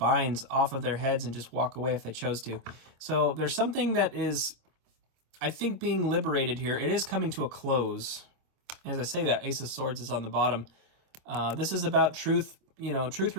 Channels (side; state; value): left; late; 25 ms